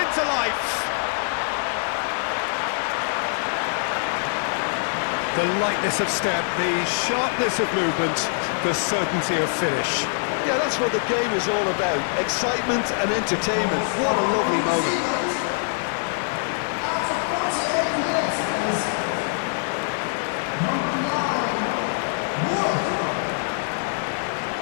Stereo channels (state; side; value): silent; right; digital silence